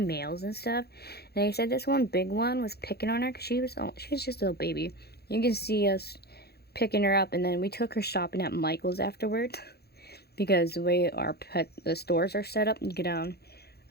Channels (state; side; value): late; right; 0.46 ms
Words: males and stuff. And they said this one big one was picking on her because she was just a little baby. You can see us picking her up, and then we took her shopping at Michael's afterwards because the way the stores are set up, you get down.